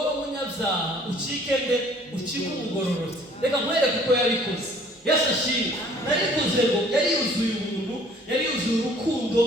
ucike umugororotse. Reka nkwereke uko yabikoze. Yesu ashimwe. Narikoze ngo yari yuzuye ubuntu, yari yuzuye urukundo,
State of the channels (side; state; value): both; normal; correlation 0.55